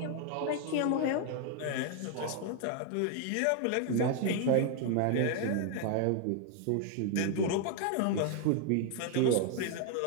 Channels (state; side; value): different; both; correlation 0.00